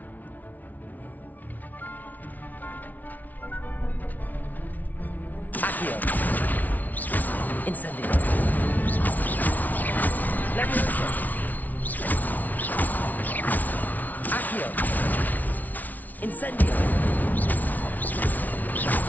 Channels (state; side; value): late; right; 0.078 ms